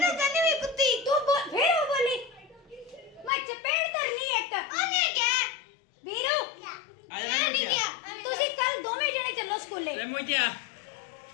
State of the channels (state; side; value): drops out; right; at 3.3 s